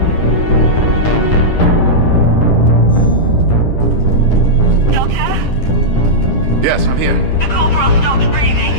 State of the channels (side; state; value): right; late; 10 ms